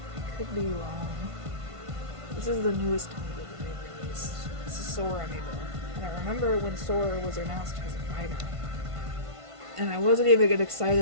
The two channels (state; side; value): late; left; 1.5 ms